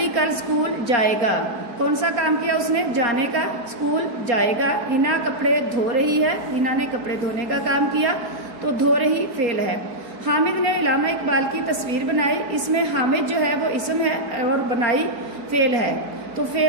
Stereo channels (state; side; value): late; left; 4.3 ms